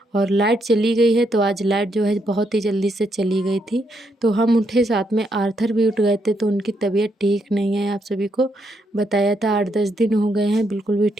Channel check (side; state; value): both; normal; correlation 0.77